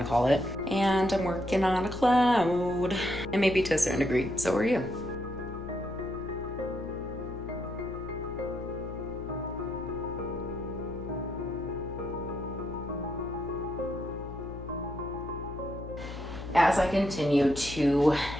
to call it. And I'm working on a cloud. And maybe to a certain degree, so are you. As I continue to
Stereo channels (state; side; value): noise; left; hum, 11 dB below the sound